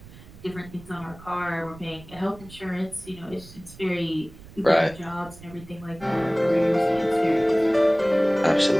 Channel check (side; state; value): right; noise; rumble, 19 dB below the sound